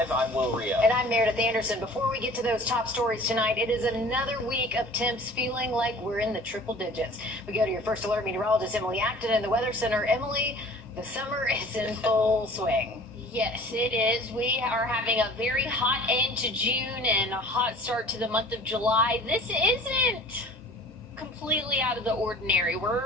I'm Wrdw. And I'm Meredith Anderson. Before we get to those top stories tonight, it is another week of temps feeling like we're in the triple digits. We go to your first alert meteorologist, Emily Acton, in the Weather Center. Emily, the summer is in full swing. Yes, it is. We are having a very hot end to June and a hot start to the month of July. This isn't completely out of the ordinary.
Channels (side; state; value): both; normal; correlation 0.46